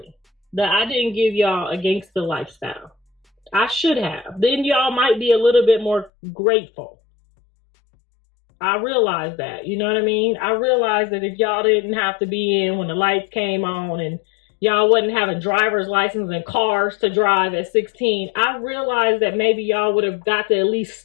that I didn't give y'all a gangster lifestyle. I should have. Then y'all might be a little bit more grateful. I realize that, you know what I mean? I realize that if y'all didn't have to be in when the lights came on and y'all wasn't having driver's license and cars to drive at 16, I realized that maybe y'all would have got to at least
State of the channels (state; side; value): drops out; right; at 6.1 s